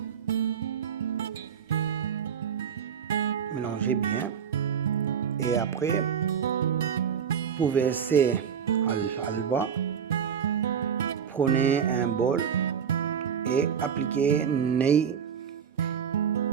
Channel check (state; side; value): quieter; left; 7.6 dB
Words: Mélangez bien. Et après, pour verser halva, prenez un bol et appliquez nez